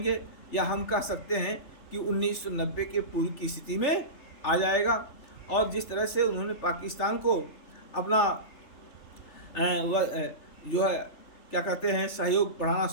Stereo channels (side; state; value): right; late; 3.4 ms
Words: या हम कह सकते हैं कि 1990 के पूर्व की स्थिति में आ जाएगा। और जिस तरह से उन्होंने पाकिस्तान को अपना जो है क्या कहते हैं सहयोग बढ़ाना